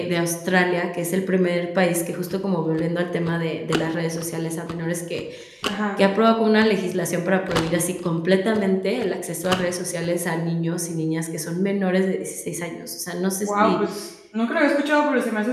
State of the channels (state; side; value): identical; both; correlation 1.00